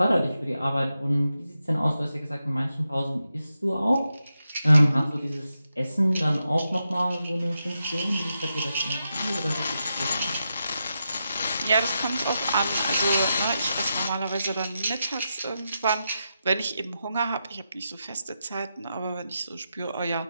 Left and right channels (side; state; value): both; inverted; correlation -0.87